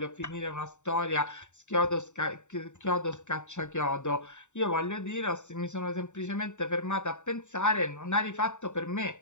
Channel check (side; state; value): right; late; 0.84 ms